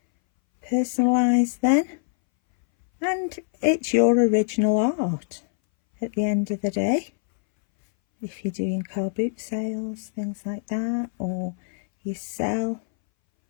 personalised then, and it's your original art at the end of the day. If you're doing car boot sales, things like that, or you sell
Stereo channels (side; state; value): right; silent; 61 dB below the other